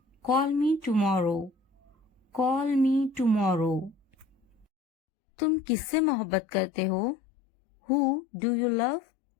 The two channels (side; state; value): right; drops out; at 4.7 s